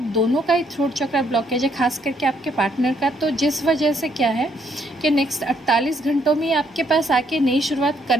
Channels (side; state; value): both; normal; correlation 0.70